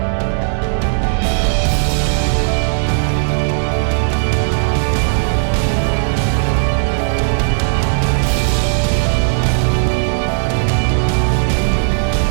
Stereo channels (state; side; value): silent; left; digital silence